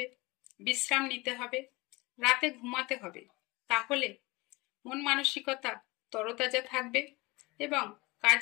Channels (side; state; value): right; quieter; 23.3 dB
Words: বিশ্রাম নিতে হবে, রাতে ঘুমাতে হবে। তাহলে মন মানসিকতা তরতাজা থাকবে এবং